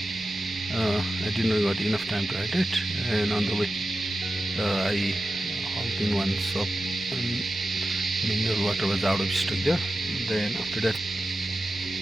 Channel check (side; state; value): both; normal; correlation 0.92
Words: I did not got enough time to hydrate, and on the way I halted in one shop and mineral water was out of stock there. Then after that